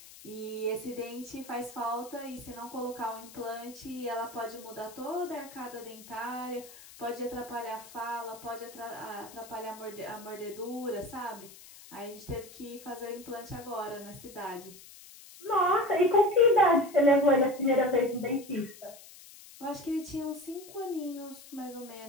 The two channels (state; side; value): noise; left; hiss, 18 dB below the sound